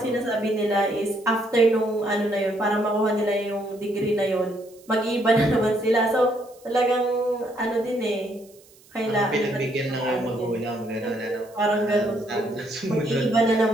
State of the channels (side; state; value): right; noise; hiss, 27 dB below the sound